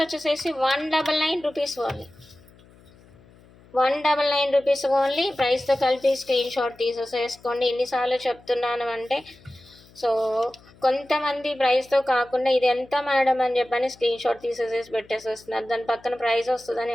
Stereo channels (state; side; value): noise; left; hum, 26 dB below the sound